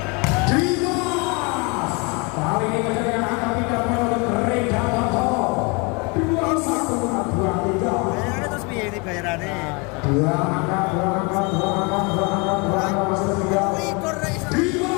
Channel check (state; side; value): quieter; right; 30.2 dB